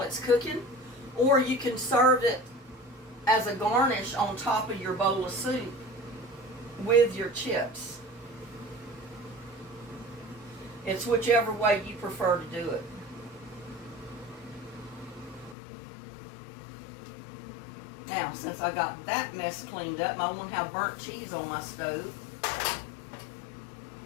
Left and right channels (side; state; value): right; drops out; at 15.6 s